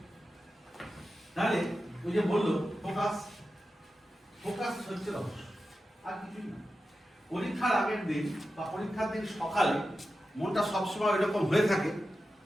তাহলে ওই যে বললো ফোকাস হচ্ছে রহস্য, আর কিছুই না। পরীক্ষার আগের দিন বা পরীক্ষার দিন সকালে মনটা সবসময় এরকম হয়ে থাকে,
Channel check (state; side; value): normal; both; correlation 0.92